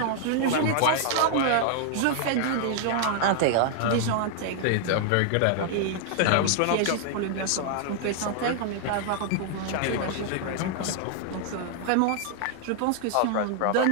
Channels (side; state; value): both; different; correlation 0.00